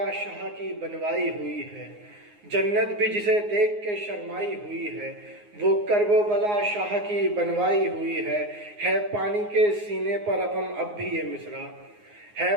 شاہ کی بنوائی ہوئی ہے، جنت بھی جسے دیکھ کے شرمائی ہوئی ہے، وہ کرب و بلا شاہ کی بنوائی ہوئی ہے پانی کے سینے پر رقم اب بھی یہ مصرع، ہے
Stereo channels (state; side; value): late; left; 9.6 ms